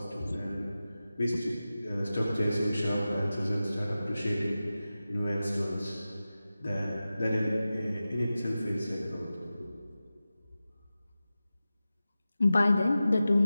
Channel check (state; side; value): inverted; both; correlation -0.95